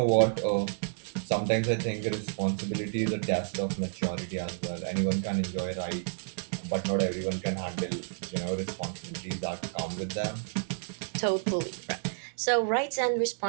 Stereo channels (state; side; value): silent; left; digital silence